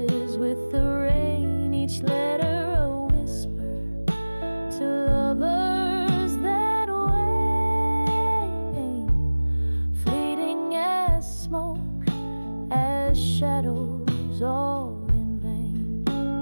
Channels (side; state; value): both; inverted; correlation -1.00